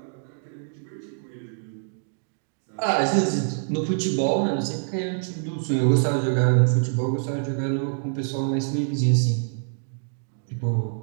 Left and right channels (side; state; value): left; silent; digital silence